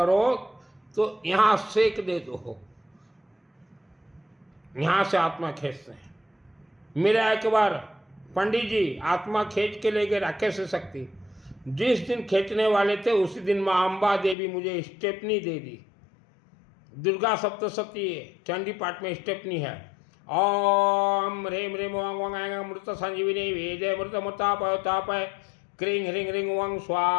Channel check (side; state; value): right; drops out; at 14.4 s